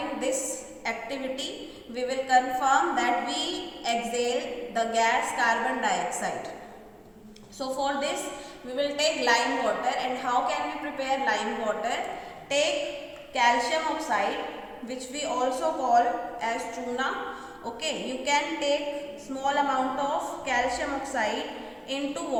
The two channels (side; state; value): both; identical; correlation 1.00